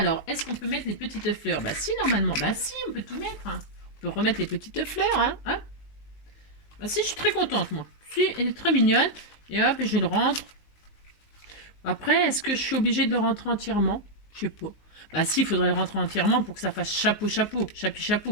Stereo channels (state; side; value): late; right; 19 ms